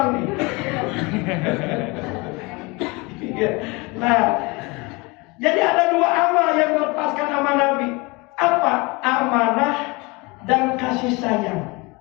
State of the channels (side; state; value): right; quieter; 26.2 dB